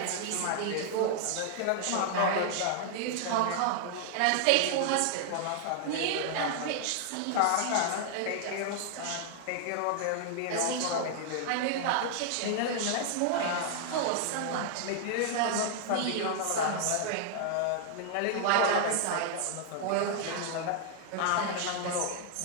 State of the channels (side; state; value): both; different; correlation -0.01